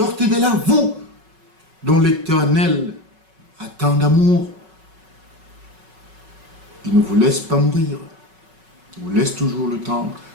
de là, vous, dont l'Éternel a tant d'amour. Il ne vous laisse pas mourir. Il vous laisse toujours le temps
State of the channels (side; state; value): left; late; 5.4 ms